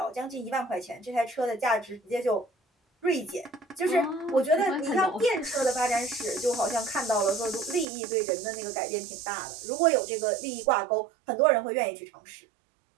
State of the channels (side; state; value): left; drops out; at 7.9 s